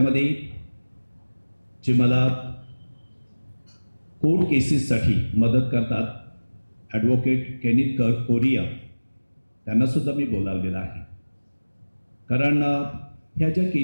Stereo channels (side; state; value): both; inverted; correlation -1.00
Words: जे मला कोर्ट केसेससाठी मदत करतात, ॲडव्होकेट केनिथ कोरिया, त्यांना सुद्धा मी बोलावलेलं आहे. कारण ह्या ज्या